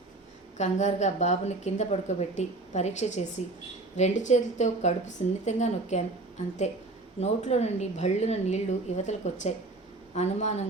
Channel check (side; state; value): left; quieter; 3.1 dB